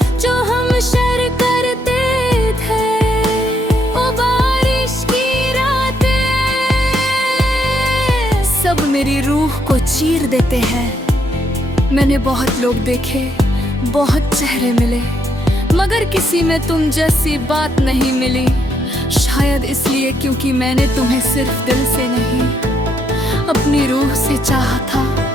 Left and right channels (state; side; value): normal; both; correlation 0.75